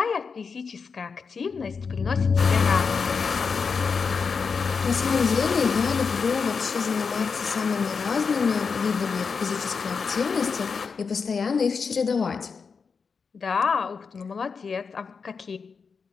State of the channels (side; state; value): right; quieter; 5.4 dB